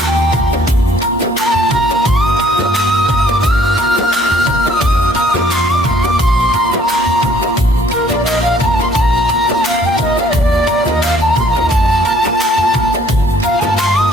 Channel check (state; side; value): normal; both; correlation 0.60